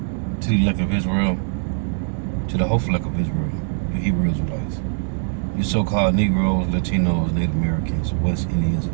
to the elect of Israel, to the hopeful elect of Israel, the Hebrew Israelites, you so-called Negroes, Latinos, Native Americans, West Indians,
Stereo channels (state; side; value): silent; left; 64 dB below the other